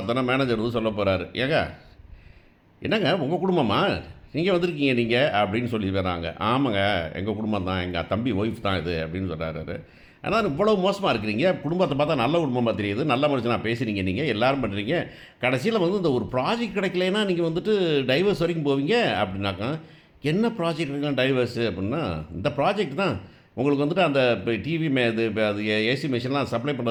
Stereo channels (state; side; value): identical; both; correlation 1.00